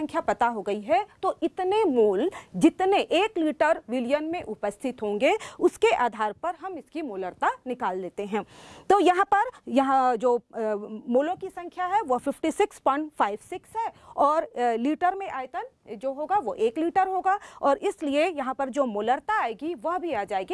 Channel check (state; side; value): identical; both; correlation 1.00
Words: पता हो गई है तो इतने मोल जितने 1 लीटर विलयन में उपस्थित होंगे उसके आधार पर हम इसकी मोलरता निकाल लेते हैं। तो यहाँ जो मोलों की संख्या है वो 56.56 है और लीटर में आयतन जो होगा वो 1 लीटर होगा और इसलिए यहाँ पर जो मोलरता आएगी वह भी आ